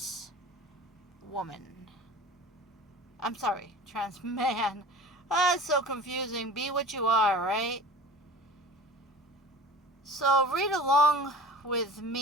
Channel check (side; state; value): both; normal; correlation 0.39